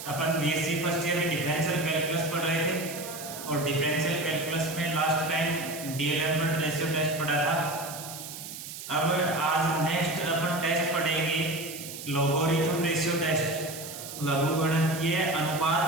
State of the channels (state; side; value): noise; right; hiss, 10 dB below the sound